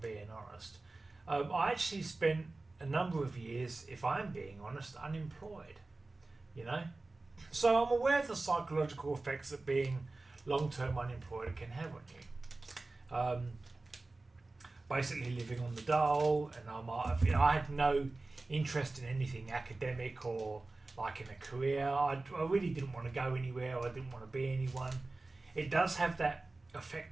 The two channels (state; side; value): quieter; left; 3.2 dB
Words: being honest, I actually spent a number of years, if I'm being honest, unemployed, So I'm aware of the psychological effects that being long-term unemployed can have on you. Basically living on the dole, and I had no interest in anything academic or like in a career. I really didn't want to go anywhere. I didn't want to be anyone. It does have that